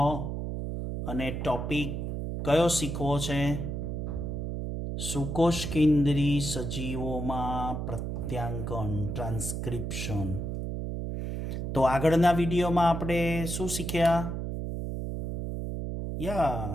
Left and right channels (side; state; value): right; noise; hum, 3 dB below the sound